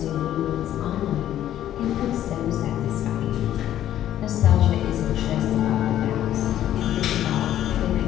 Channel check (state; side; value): quieter; right; 11.9 dB